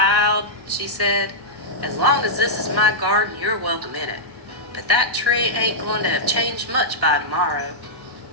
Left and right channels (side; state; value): both; normal; correlation -0.09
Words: she said, as long as this is my garden, you're welcome in it. But that tree ain't going to have changed much by tomorrow.